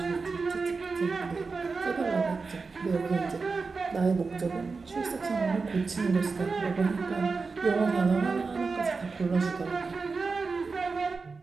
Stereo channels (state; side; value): quieter; left; 4.4 dB